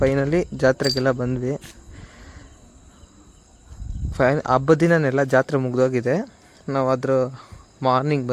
ಜಾತ್ರೆಗೆಲ್ಲ ಬಂದ್ವಿ. ಹಬ್ಬದ ದಿನನೆಲ್ಲ ಜಾತ್ರೆ ಮುಗ್ದೋಗಿದೆ. ನಾವು ಅದ್ರ ಮಾರ್ನಿಂಗ್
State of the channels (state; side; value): identical; both; correlation 1.00